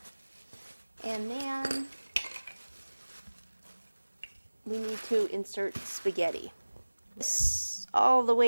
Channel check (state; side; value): inverted; both; correlation -1.00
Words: And then we need to insert spaghetti. All the